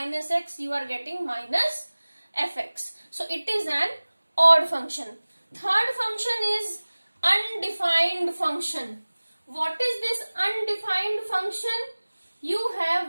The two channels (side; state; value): both; inverted; correlation -1.00